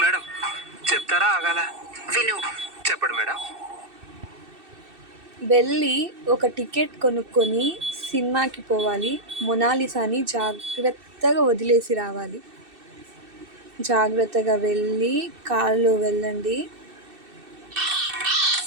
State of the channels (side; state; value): left; late; 2.6 ms